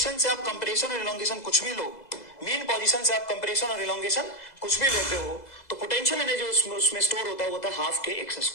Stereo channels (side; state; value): right; late; 2.0 ms